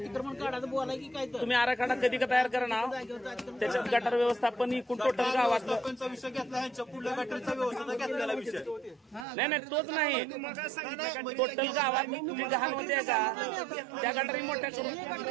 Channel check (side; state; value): left; drops out; at 9.2 s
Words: काढायचं बोलाय की काय तर तुम्ही आराखडा कधी का तयार करा ना, त्याच्यात गटर व्यवस्थापन एकूण टोटल गावात विषय घेतला ह्यांच्या पुढल्या गटरचा व्यवस्था घेतलेला विषय नाही तोच नाही, टोटल गावात तुम्ही घाल होते का त्या गटरी मोठ्या